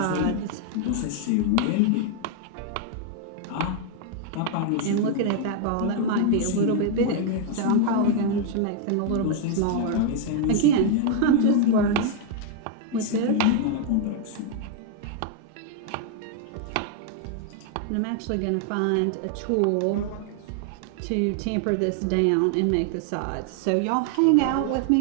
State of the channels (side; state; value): both; different; correlation 0.00